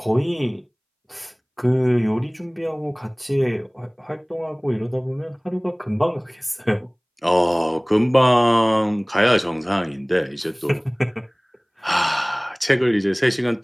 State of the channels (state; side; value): identical; both; correlation 1.00